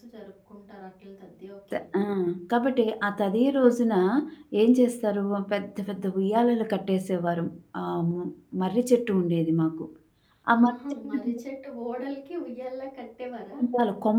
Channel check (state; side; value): identical; both; correlation 1.00